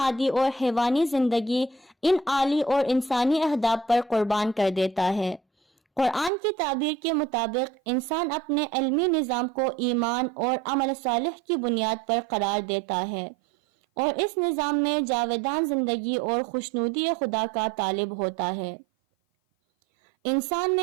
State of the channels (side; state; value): left; drops out; at 6.3 s